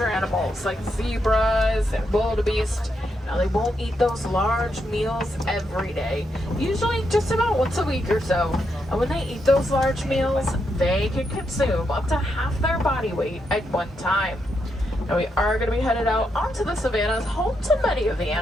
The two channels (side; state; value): both; normal; correlation 0.81